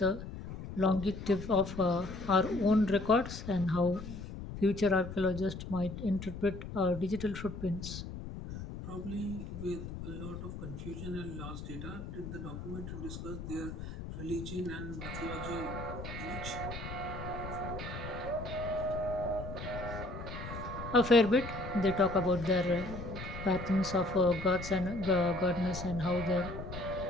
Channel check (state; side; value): noise; left; rumble, 9 dB below the sound